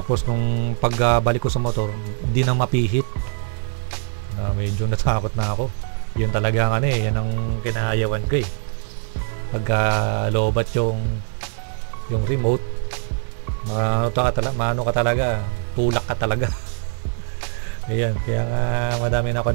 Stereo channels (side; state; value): left; silent; digital silence